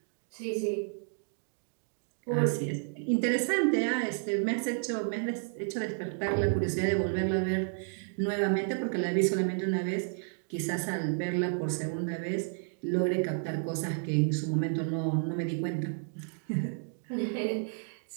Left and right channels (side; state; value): left; silent; 57 dB below the other